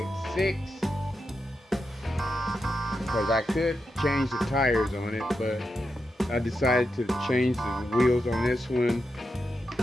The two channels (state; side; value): normal; both; correlation 0.87